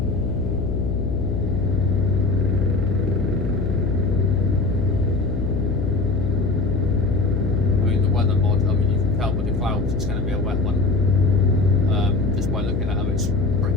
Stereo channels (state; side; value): noise; left; hum, 2 dB below the sound